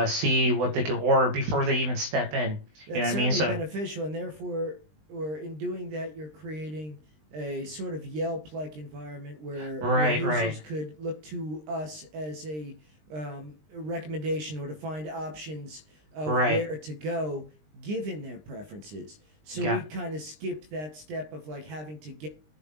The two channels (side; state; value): left; late; 20 ms